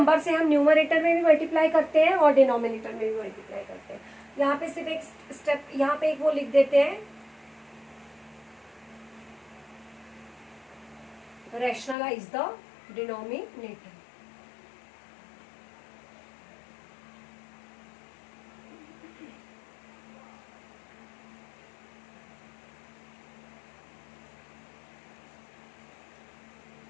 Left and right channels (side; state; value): right; drops out; at 12.0 s